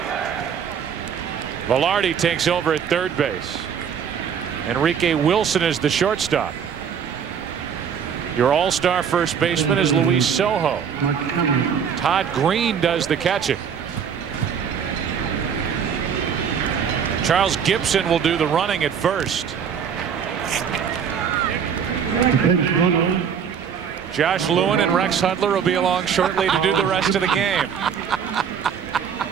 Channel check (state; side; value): quieter; left; 7.5 dB